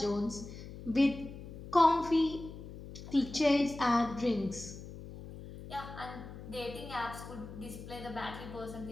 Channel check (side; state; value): left; noise; hum, 13 dB below the sound